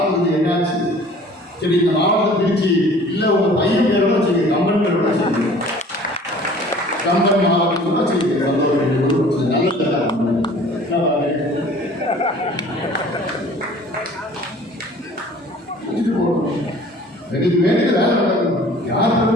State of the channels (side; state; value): both; normal; correlation 0.49